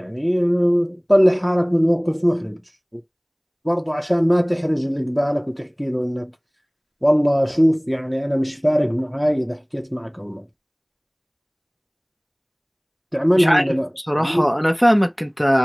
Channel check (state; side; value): identical; both; correlation 1.00